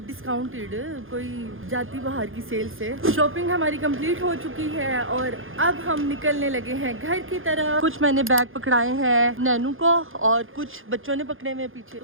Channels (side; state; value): left; late; 0.59 ms